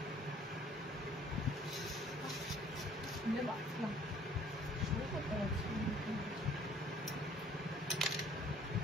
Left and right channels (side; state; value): both; normal; correlation 0.57